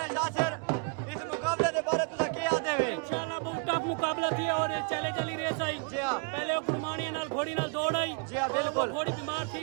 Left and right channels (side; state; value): left; quieter; 35.8 dB